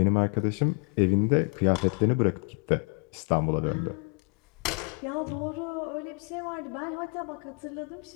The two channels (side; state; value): right; quieter; 36.9 dB